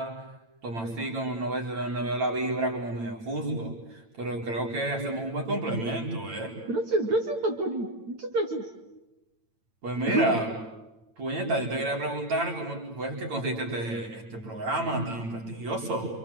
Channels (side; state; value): left; late; 8.9 ms